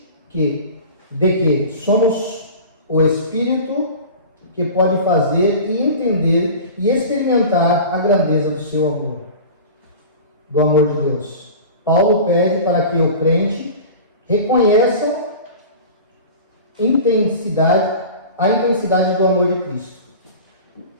de que somos o Espírito que pode fazer e entender e experimentar a grandeza do seu amor, do amor de Deus. Paulo pede para que o crente reconheça a intensidade do amor de Cristo.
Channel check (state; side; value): inverted; both; correlation -0.36